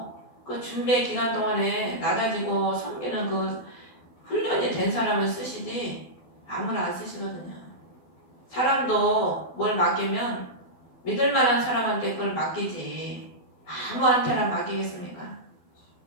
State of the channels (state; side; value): late; right; 12 ms